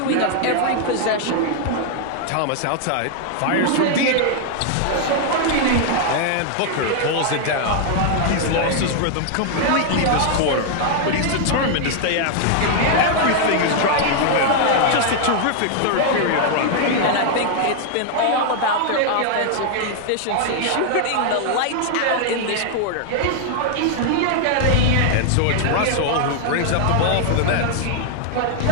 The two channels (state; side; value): different; both; correlation 0.00